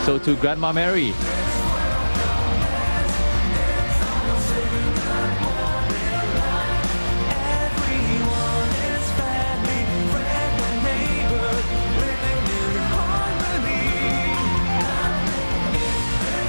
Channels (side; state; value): both; inverted; correlation -1.00